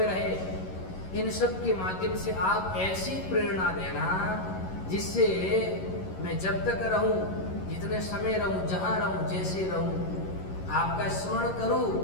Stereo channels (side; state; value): right; late; 11 ms